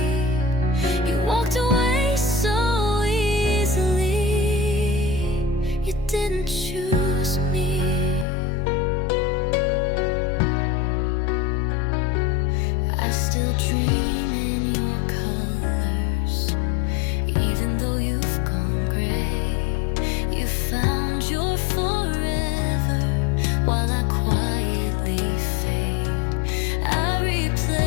You walked away so easily. You didn't choose me. I still dream in your colors, even though you've gone gray. You found your forever while I quietly fade. I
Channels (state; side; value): drops out; right; at 8.2 s